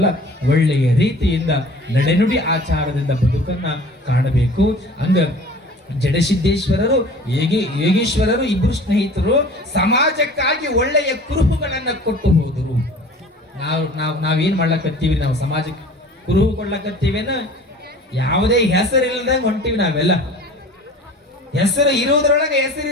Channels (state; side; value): normal; both; correlation 0.44